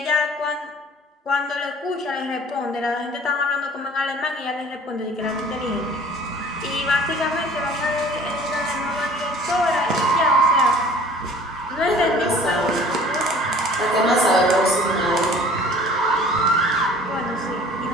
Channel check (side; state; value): both; normal; correlation 0.49